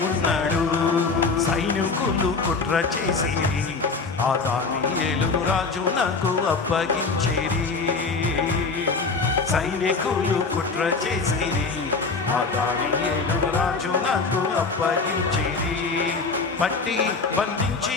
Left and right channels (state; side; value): quieter; right; 4.3 dB